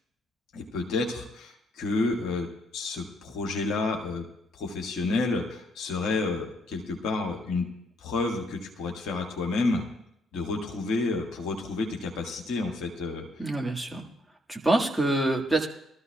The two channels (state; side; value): normal; both; correlation 0.71